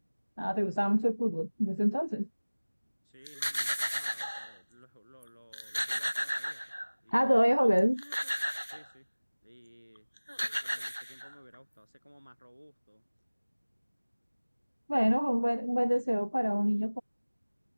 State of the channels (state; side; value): inverted; both; correlation -1.00